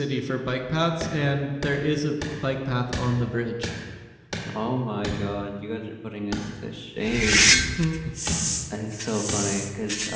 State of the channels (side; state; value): both; identical; correlation 1.00